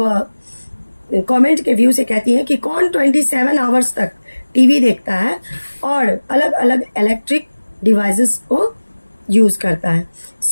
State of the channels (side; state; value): both; inverted; correlation -1.00